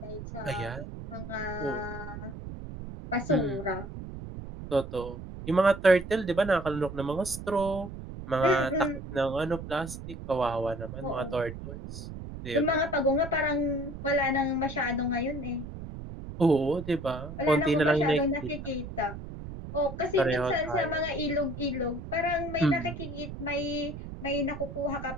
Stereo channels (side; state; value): right; noise; rumble, 10 dB below the sound